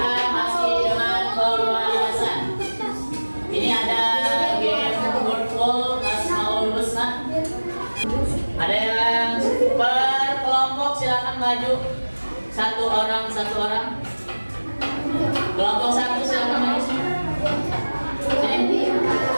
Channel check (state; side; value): inverted; both; correlation -1.00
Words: masih dengan pembahasan. Ini ada game wordful Asmaul Husna. Ada yang per kelompok, silakan maju. Satu orang. Kelompok satu silakan maju. Sini.